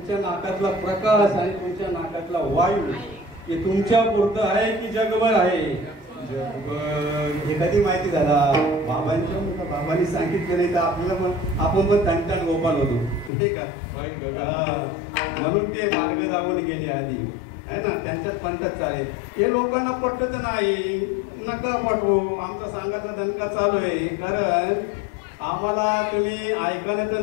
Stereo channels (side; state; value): right; drops out; at 13.3 s